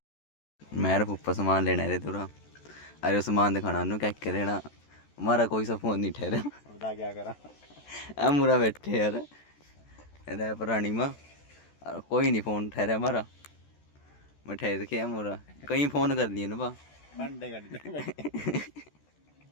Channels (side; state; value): right; late; 14 ms